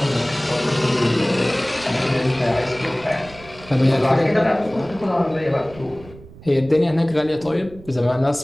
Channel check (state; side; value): noise; right; rumble, 20 dB below the sound